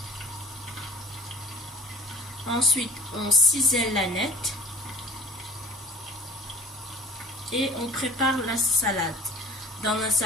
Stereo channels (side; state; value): both; normal; correlation 0.44